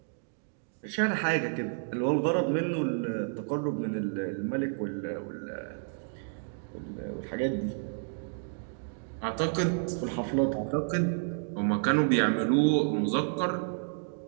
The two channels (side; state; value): left; silent; digital silence